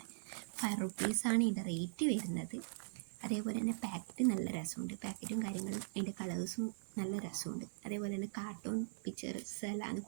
5 റുപ്പീസാണ് ഇതിൻ്റെ റേറ്റ് വരുന്നത്. അതേപോലെ തന്നെ പാക്കറ്റ് നല്ല രസമുണ്ട്. പാക്കറ്റും കാര്യങ്ങളും അതിൻ്റെ കളേഴ്സും നല്ല രസമുണ്ട്. അതേപോലെ തന്നെ കാർട്ടൂൺ പിക്ചേഴ്സ് എല്ലാം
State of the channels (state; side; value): silent; left; digital silence